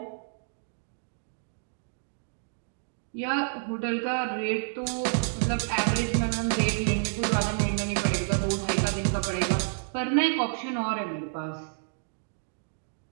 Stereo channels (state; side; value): silent; left; digital silence